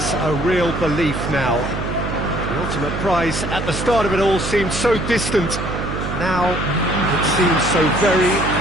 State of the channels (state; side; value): noise; right; hum, 5 dB below the sound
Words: a real belief now. The ultimate prize at the start of it all seemed so distant. Now it seems so very,